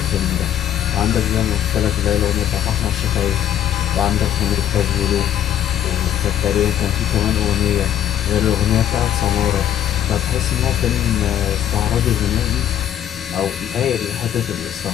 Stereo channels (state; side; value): quieter; right; 10.7 dB